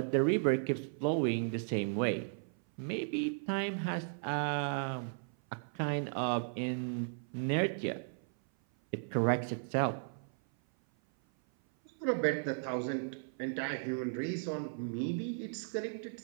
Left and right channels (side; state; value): left; silent; 54 dB below the other